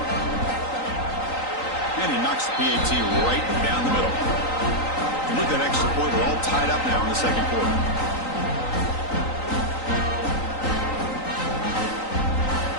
And he knocks the PAT right down the middle. And with that extra point, we're all tied up now in the second quarter.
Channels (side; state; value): right; late; 3.9 ms